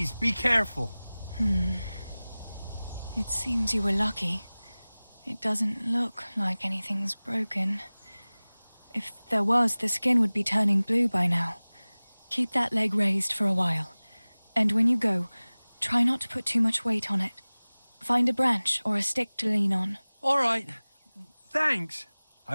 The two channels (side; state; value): both; inverted; correlation -0.99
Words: be careful. It seems you were lucky. It doesn't look like anything's broken. If there was, the skin would be turning blue by now. Keep that leg raised for a while. And when you go, try not to put too much weight on it. Find a branch or a stick to lean on. All right, thanks.